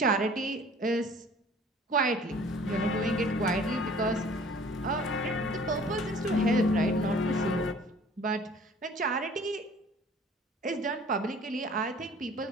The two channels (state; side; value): normal; both; correlation 0.50